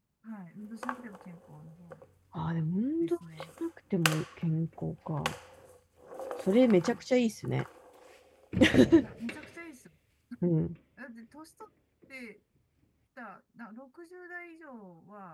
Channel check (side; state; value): both; identical; correlation 1.00